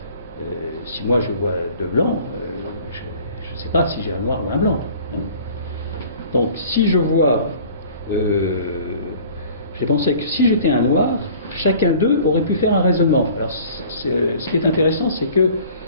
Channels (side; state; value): both; inverted; correlation -0.48